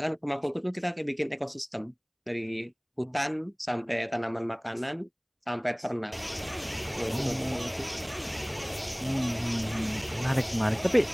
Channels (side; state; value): both; identical; correlation 1.00